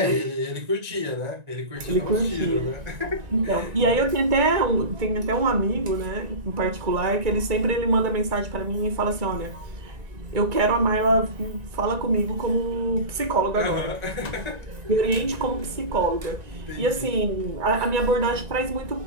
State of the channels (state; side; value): late; left; 1.9 ms